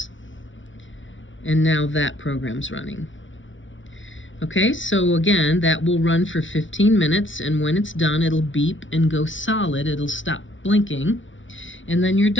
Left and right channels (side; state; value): right; late; 0.56 ms